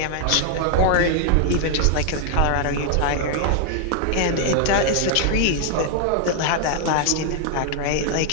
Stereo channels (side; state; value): both; different; correlation 0.00